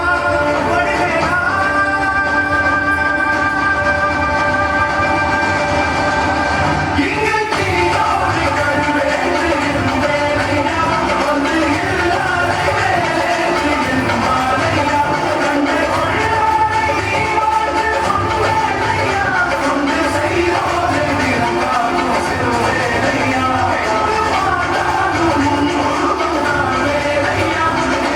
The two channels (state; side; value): identical; both; correlation 1.00